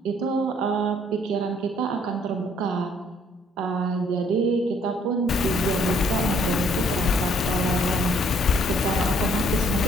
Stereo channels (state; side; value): normal; both; correlation 0.64